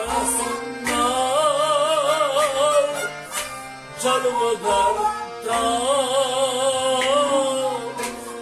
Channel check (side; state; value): both; identical; correlation 1.00